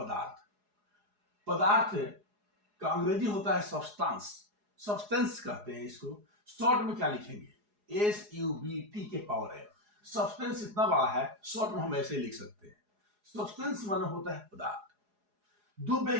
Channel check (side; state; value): left; late; 4.8 ms